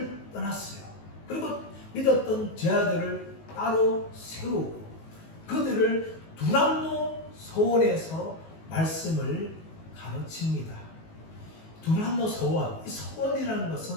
떠났어요. 그리고 믿었던 제자들을 따로 세우고 그들을 두란노 소원에서 말씀을 가르칩니다. 두란노 소원, 이 소원이라는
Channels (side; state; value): right; late; 19 ms